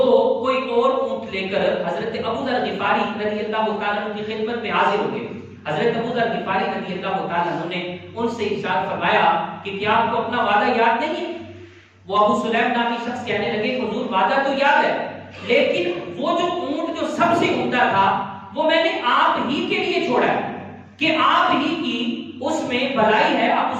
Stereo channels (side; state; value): both; identical; correlation 1.00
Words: کوئی اور اونٹ لے کر حضرت ابو ذر غفاری رضی اللہ تعالیٰ عنہ کی خدمت میں حاضر ہو گئے۔ حضرت ابو ذر غفاری رضی اللہ تعالیٰ عنہ نے ان سے ارشاد فرمایا کہ کیا آپ کو اپنا وعدہ یاد نہیں ہے؟ وہ ابو سلیم نامی شخص کہنے لگے کہ حضور وعدہ تو یاد ہے، لیکن وہ جو اونٹ جو سب سے عمدہ تھا وہ میں نے آپ ہی کے لیے چھوڑا ہے کہ آپ ہی کی اس میں بھلائی ہے، آپ